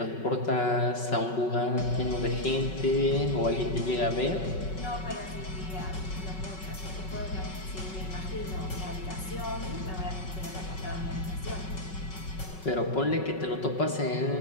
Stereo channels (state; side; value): late; right; 5.4 ms